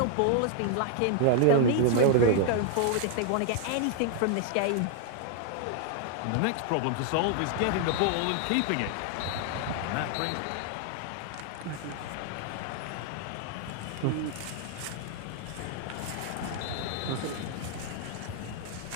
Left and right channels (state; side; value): different; both; correlation 0.00